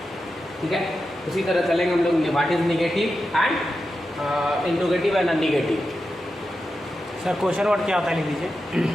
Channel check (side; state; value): both; normal; correlation 0.90